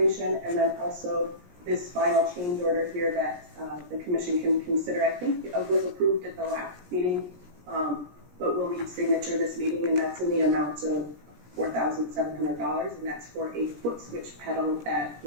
and then also this final change order here that the commission can consider. I think it was approved at the last meeting, but we'll need signature this meeting, and that's in the amount of $4,700, and that's for a foot switch pedal that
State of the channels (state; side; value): late; left; 17 ms